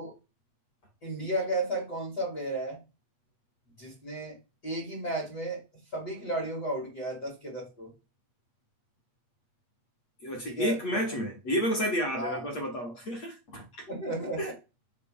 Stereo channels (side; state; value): right; late; 8.4 ms